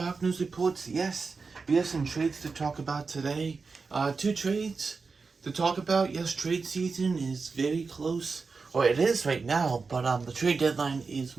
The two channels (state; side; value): quieter; left; 4.6 dB